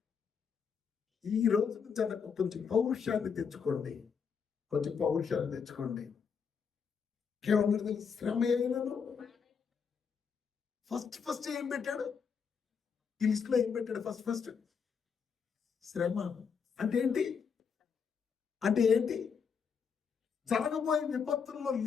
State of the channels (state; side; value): quieter; right; 6.3 dB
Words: ఈ రోజు నుంచి అన్నకు కొంచెం పౌరుషాన్ని తెచ్చుకోండి. కొంచెం పౌరుషాన్ని తెచ్చుకోండి. ఏమన్నా శ్రమ అయినను ఫస్ట్ ఏం పెట్టాడు? ఈ లిస్ట్ లో ఏం పెట్టాడు? ఫస్ట్ శ్రమ అంటే ఏంటి? అంటే ఏంటి? జరగబోయే విపత్తుల్లో